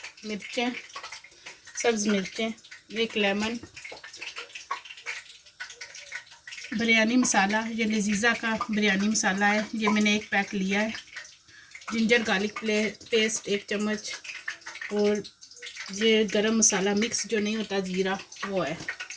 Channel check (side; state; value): both; identical; correlation 1.00